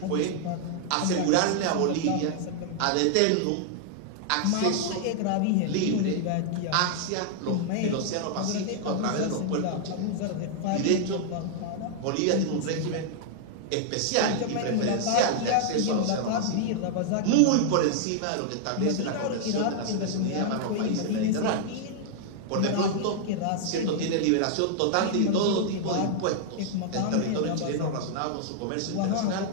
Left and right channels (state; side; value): different; both; correlation -0.01